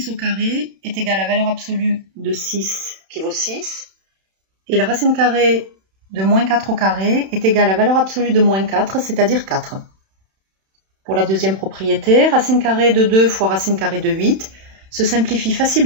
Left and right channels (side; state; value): left; late; 31 ms